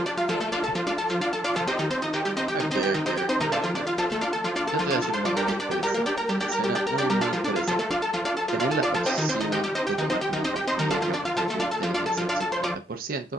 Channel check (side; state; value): both; normal; correlation 0.78